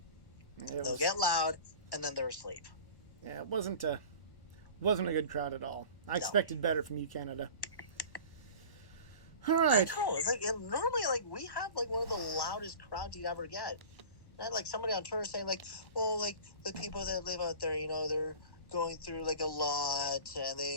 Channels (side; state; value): right; late; 1.1 ms